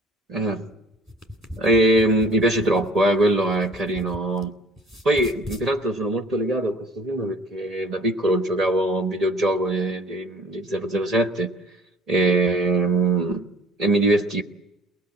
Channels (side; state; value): both; normal; correlation 0.50